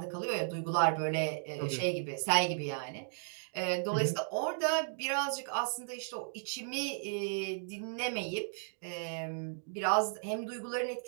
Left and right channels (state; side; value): silent; left; digital silence